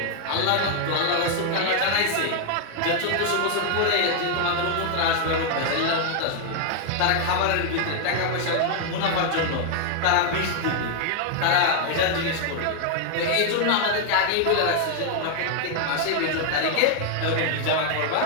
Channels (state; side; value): different; both; correlation 0.00